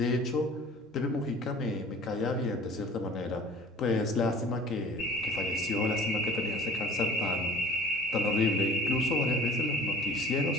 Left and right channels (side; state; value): both; normal; correlation 0.45